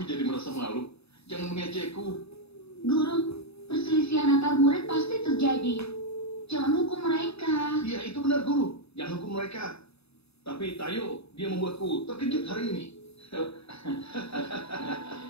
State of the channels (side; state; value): right; late; 0.78 ms